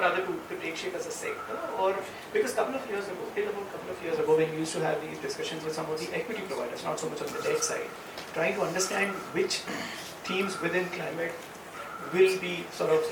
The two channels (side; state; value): both; identical; correlation 1.00